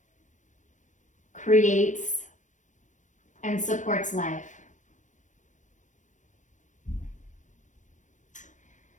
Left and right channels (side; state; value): right; late; 0.36 ms